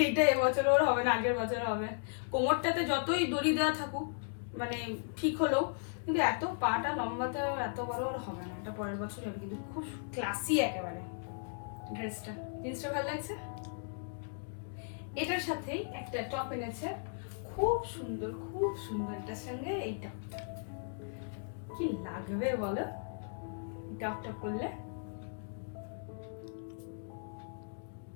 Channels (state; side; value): silent; right; digital silence